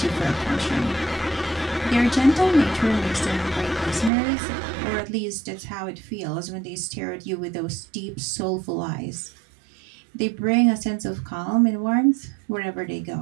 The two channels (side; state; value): left; drops out; at 4.1 s